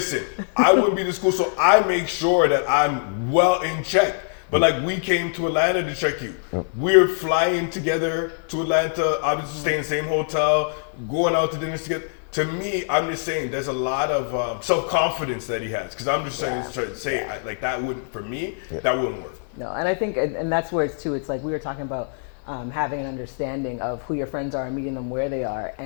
I wouldn't be this cool, so I make sure that I'm well in check. But like we came to Atlanta to check you. We're flying together to Atlanta, obviously staying in the same hotel, going out to dinner together. To me, I'm just saying there's a lot of self-confidence that he has. Because I'm just trying to say like that wouldn't, for me, that wouldn't work. No, and I think, and that's where it's too, it's like we were talking about having an understanding of who your friends are and meeting them where they are.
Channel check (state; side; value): silent; right; 63 dB below the other